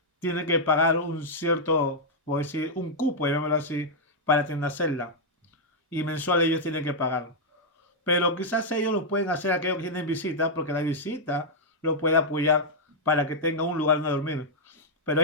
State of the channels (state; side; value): normal; both; correlation -0.05